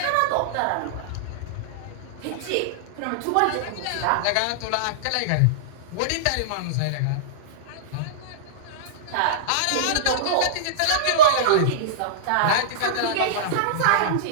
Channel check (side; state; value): both; different; correlation -0.03